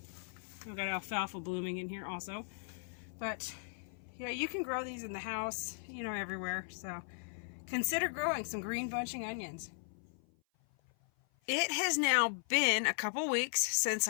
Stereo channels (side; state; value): right; silent; 53 dB below the other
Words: I've got alfalfa blooming in here also. But, yeah, you can grow these in the house, you know, everywhere. So, consider growing some green bunching onions. It has now been a couple weeks since